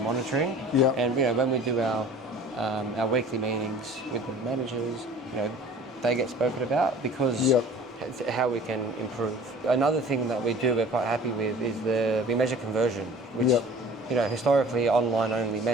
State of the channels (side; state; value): both; normal; correlation 0.45